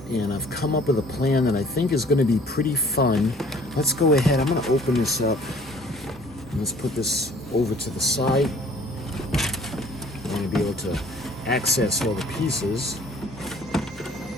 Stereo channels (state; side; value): normal; both; correlation 0.54